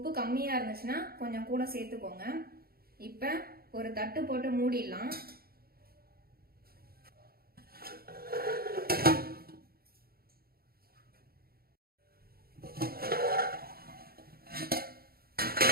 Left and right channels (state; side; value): late; left; 0.44 ms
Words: கம்மியா இருந்துச்சுன்னா கொஞ்சம் கூட சேர்த்துக்கோங்க. இப்ப ஒரு தட்டு போட்டு மூடிடலாம்.